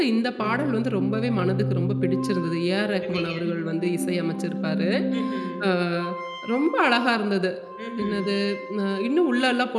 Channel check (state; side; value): identical; both; correlation 1.00